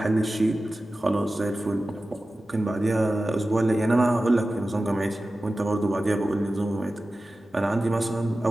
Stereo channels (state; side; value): normal; both; correlation 0.95